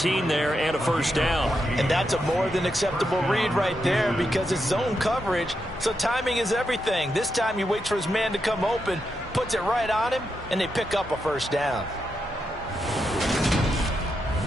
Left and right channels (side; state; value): both; normal; correlation 0.84